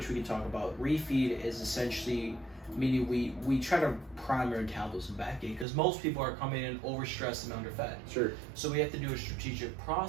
we can talk about. Refeed is essentially meaning we try to prime your metabolism back in, because most people are coming in overstressed and underfed. Sure. So we have to do a strategic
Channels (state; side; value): drops out; left; at 5.7 s